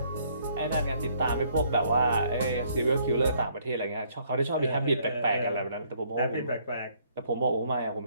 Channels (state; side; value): inverted; both; correlation -0.66